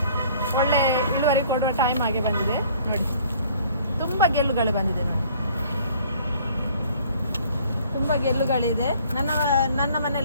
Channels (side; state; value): both; inverted; correlation -0.55